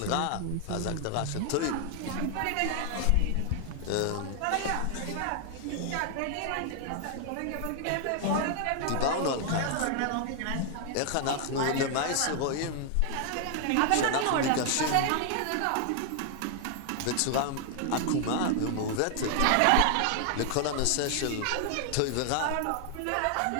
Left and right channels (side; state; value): both; different; correlation 0.00